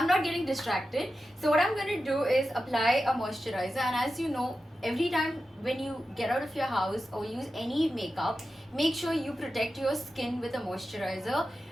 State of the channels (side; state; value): both; normal; correlation 0.92